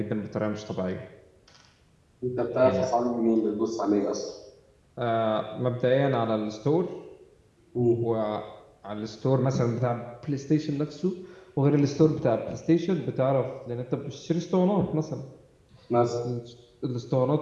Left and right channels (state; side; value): identical; both; correlation 1.00